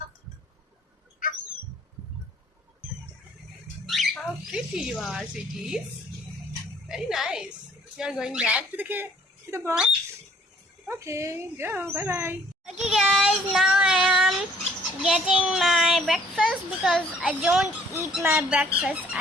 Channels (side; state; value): both; normal; correlation 0.60